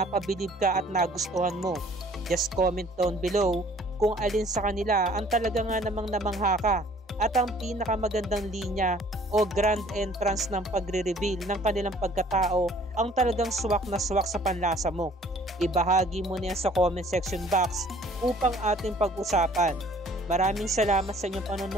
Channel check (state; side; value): normal; both; correlation 0.55